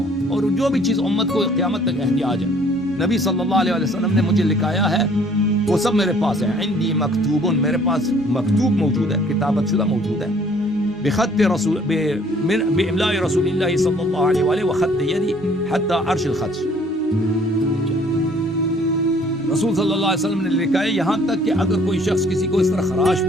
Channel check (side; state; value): both; normal; correlation 0.58